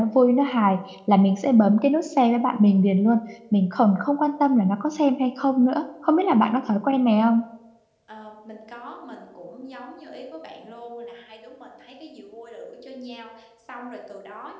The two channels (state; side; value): identical; both; correlation 1.00